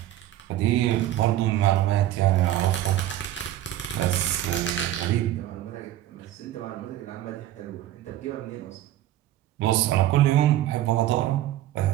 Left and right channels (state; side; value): quieter; left; 13.3 dB